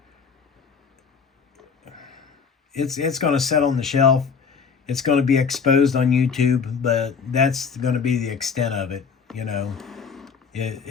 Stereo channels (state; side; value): quieter; right; 6.0 dB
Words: it's going to set on the shelf. It's going to be exposed on YouTube, but that's going to be the extent of it, you know.